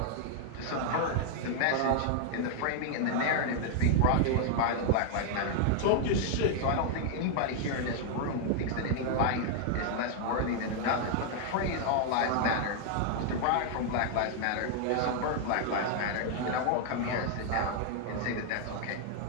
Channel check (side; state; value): both; different; correlation -0.01